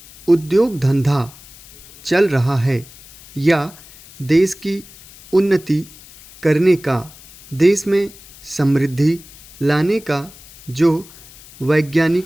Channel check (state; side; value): noise; left; hiss, 21 dB below the sound